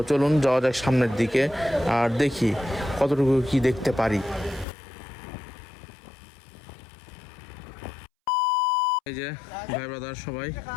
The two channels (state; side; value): drops out; right; at 4.7 s